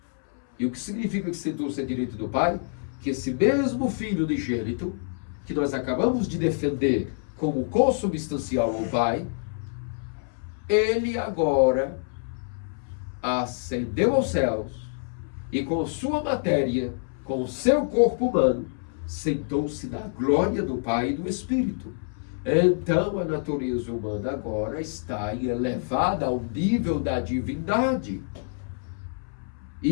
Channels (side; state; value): right; silent; 60 dB below the other